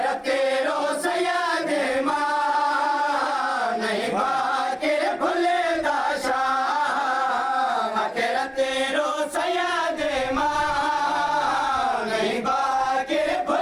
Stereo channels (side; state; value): both; identical; correlation 1.00